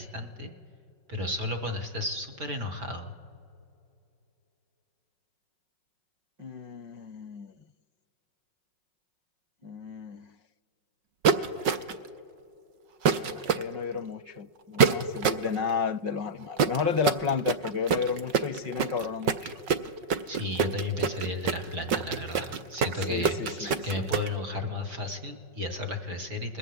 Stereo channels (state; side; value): late; left; 5.4 ms